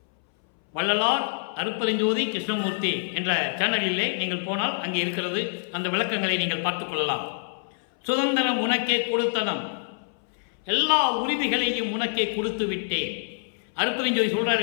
வள்ளலார் அருப்பெருஞ்சோதி கிருஷ்ணமூர்த்தி என்ற சேனலிலே நீங்கள் போனால் அங்கே இருக்கிறது. அந்த விளக்கங்களை நீங்கள் பார்த்துக் கொள்ளலாம். சுதந்திரம் உனக்கே கொடுத்தனம், எல்லா உரிமைகளையும் உனக்கே கொடுத்து விட்டேன். அருப்பெருஞ்சோதி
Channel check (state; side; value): silent; right; 60 dB below the other